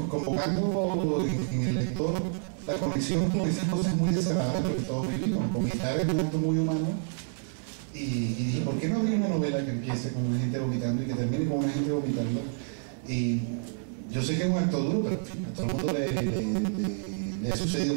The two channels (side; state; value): left; silent; 59 dB below the other